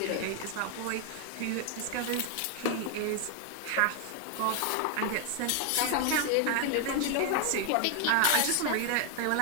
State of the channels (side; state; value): both; different; correlation 0.00